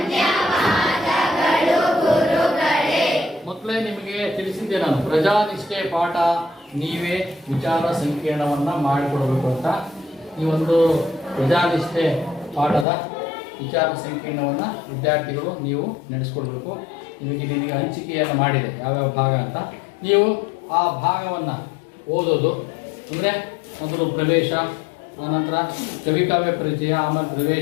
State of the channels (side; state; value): right; drops out; at 12.9 s